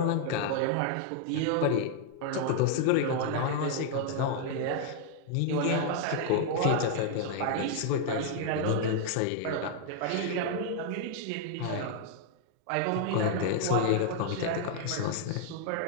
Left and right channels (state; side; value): different; both; correlation 0.00